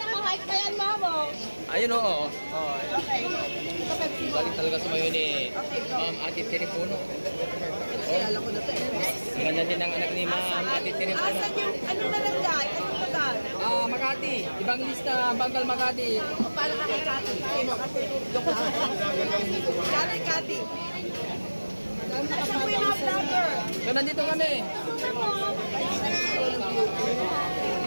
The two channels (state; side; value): inverted; both; correlation -1.00